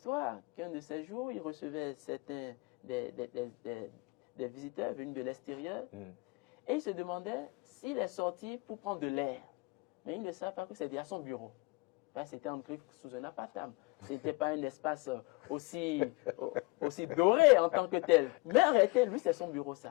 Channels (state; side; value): quieter; right; 25.3 dB